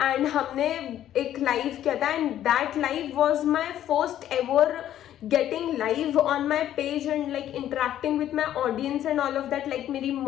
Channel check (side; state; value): right; quieter; 11.7 dB